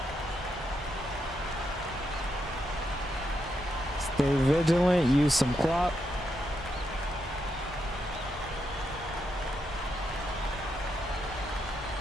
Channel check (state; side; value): normal; both; correlation 0.82